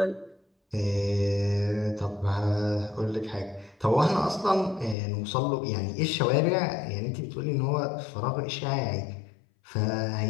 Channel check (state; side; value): drops out; right; at 5.0 s